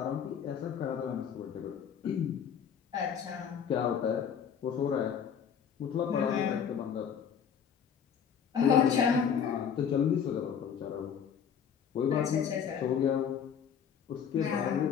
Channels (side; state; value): right; quieter; 7.7 dB